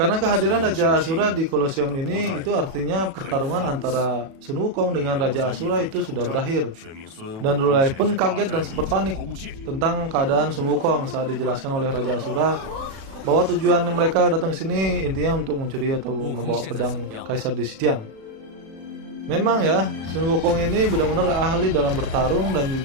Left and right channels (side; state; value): left; late; 37 ms